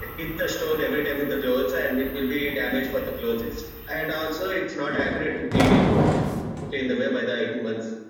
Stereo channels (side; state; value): both; identical; correlation 1.00